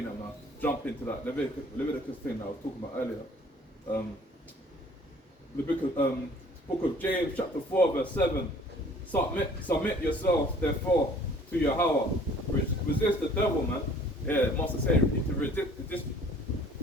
I'm gonna jump into that Leviticus thing that I was talking about earlier. The book of James, chapter 4, verse 7. Submit yourselves, therefore, to Yahweh. Resist the devil, man. Yeah, Master saying we need to resist.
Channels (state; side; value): normal; both; correlation 0.53